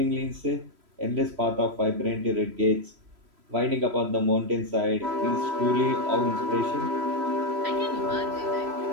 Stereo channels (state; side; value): late; left; 3.0 ms